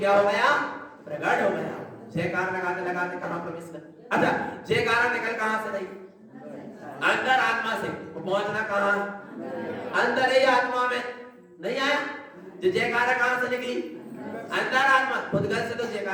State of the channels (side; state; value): both; identical; correlation 1.00